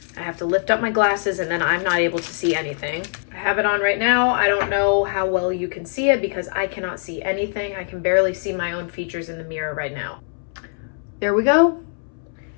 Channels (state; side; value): silent; right; 64 dB below the other